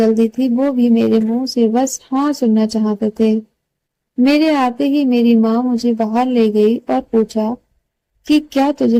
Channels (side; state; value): both; identical; correlation 1.00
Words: थी, वो भी मेरे मुंह से बस हाँ सुनना चाहते थे। मेरे आते ही मेरी माँ मुझे बाहर ले गई और पूछा कि क्या तुझे